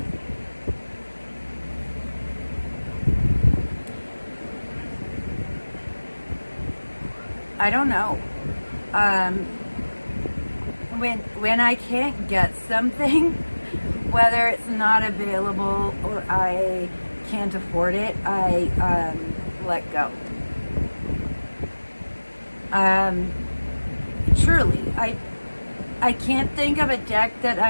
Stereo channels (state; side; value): inverted; both; correlation -1.00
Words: I don't know. when I can't get something, whether it's not available or I can't afford it, I let go. Truly, I can't think of a deck that